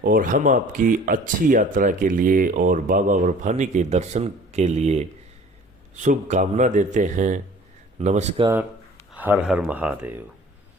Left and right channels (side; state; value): both; normal; correlation 0.48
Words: और हम आपकी अच्छी यात्रा के लिए और बाबा बर्फानी के दर्शन के लिए शुभकामना देते हैं। नमस्कार। हर हर महादेव।